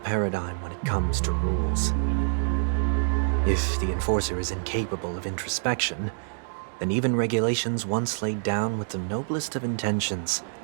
when it comes to rules. If the enforcer is incapable of introspection, then even regulations once laid down with the noblest of intentions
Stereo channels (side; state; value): left; silent; digital silence